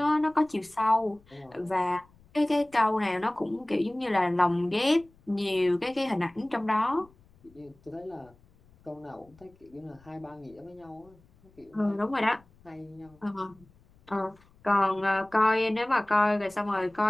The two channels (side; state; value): left; noise; rumble, 29 dB below the sound